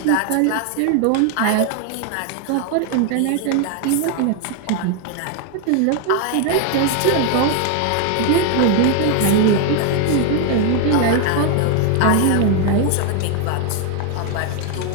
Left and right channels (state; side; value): different; both; correlation 0.00